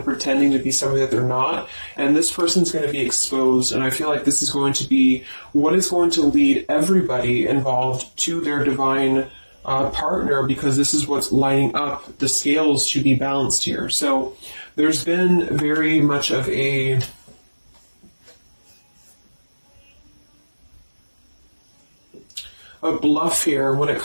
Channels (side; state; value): both; inverted; correlation -1.00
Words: pretending to be somebody that they're not, and this person's going to be exposed. And I feel like this is going to be what is going to lead everybody involved to their divine partner, because this is what's lining up the scales to be balanced here. So there's been very much of a bluff here when it